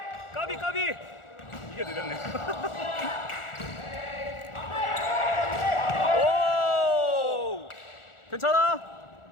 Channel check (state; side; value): late; right; 1.4 ms